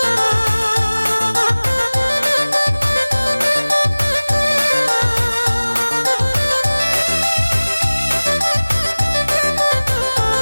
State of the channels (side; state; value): both; inverted; correlation -1.00